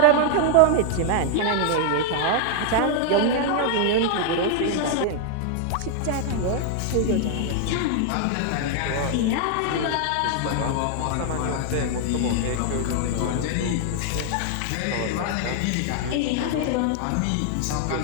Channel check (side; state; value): both; different; correlation 0.00